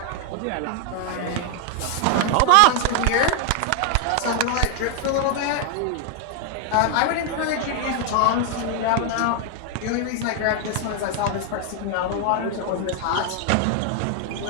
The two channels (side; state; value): both; different; correlation 0.00